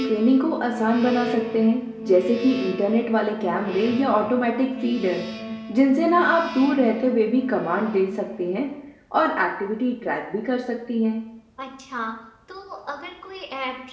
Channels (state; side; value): identical; both; correlation 1.00